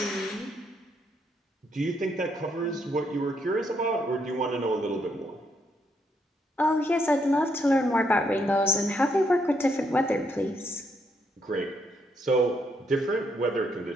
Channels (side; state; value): both; normal; correlation 0.75